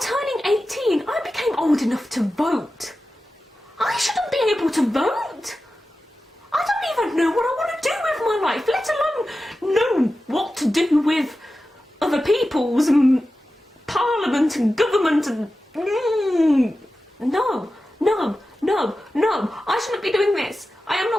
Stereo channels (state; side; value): normal; both; correlation 0.93